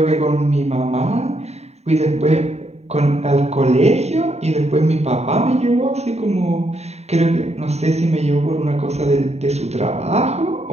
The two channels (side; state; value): left; late; 0.31 ms